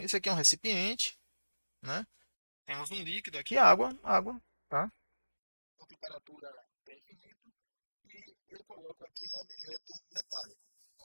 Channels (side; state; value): both; inverted; correlation -1.00